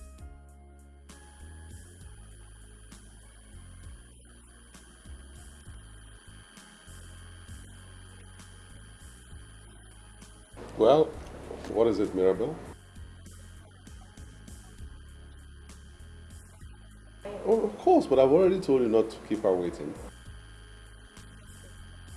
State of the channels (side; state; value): both; identical; correlation 1.00